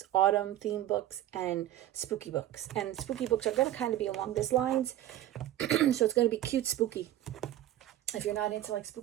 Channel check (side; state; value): left; quieter; 13.3 dB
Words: autumn theme books, and spooky books. And spooky books are going to kind of be along these lines. So it's going to be cute spooky. If you're not into like